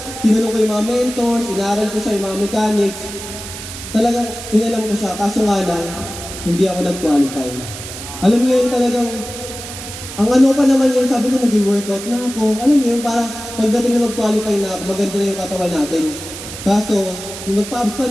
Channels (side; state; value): right; noise; hiss, 11 dB below the sound